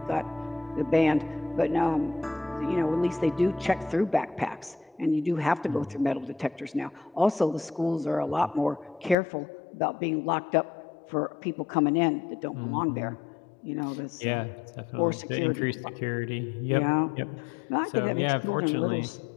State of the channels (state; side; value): drops out; right; at 9.2 s